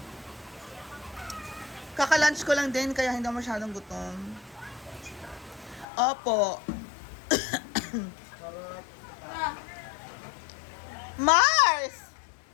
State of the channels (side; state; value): right; drops out; at 5.9 s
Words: Kaka-lunch ko lang din, kaya hindi ako masyadong gutom. Opo. Mars!